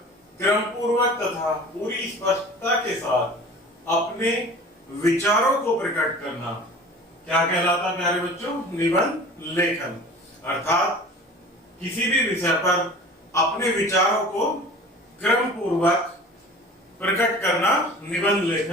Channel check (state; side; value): normal; both; correlation 0.41